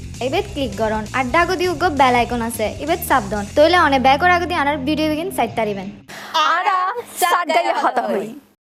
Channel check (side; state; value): both; identical; correlation 1.00